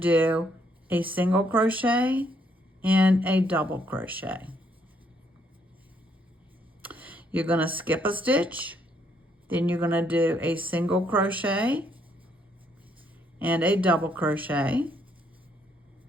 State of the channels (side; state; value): both; normal; correlation 0.71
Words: a single crochet and a double crochet. You're going to skip a stitch, then you're going to do a single crochet and a double crochet.